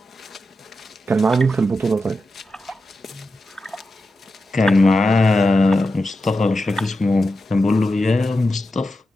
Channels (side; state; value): both; normal; correlation 0.90